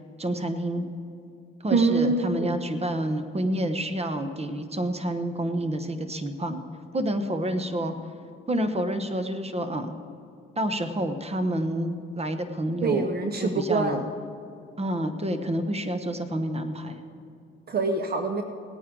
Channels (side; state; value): both; normal; correlation 0.57